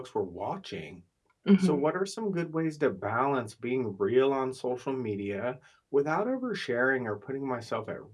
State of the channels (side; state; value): both; identical; correlation 1.00